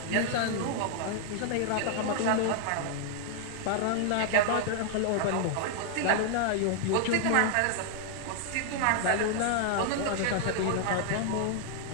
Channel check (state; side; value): different; both; correlation 0.00